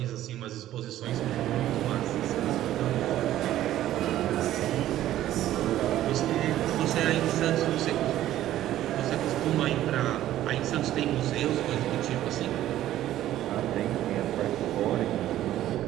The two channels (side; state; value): left; quieter; 13.3 dB